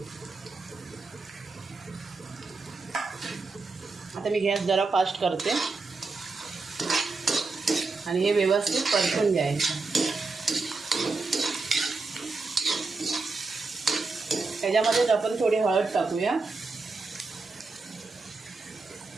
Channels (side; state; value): left; quieter; 3.9 dB